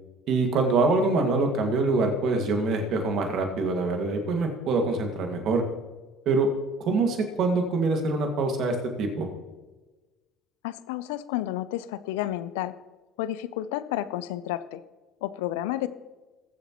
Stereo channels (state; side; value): normal; both; correlation 0.45